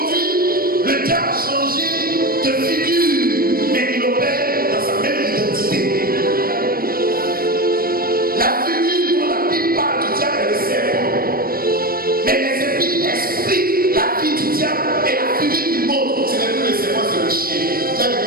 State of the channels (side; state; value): left; late; 0.43 ms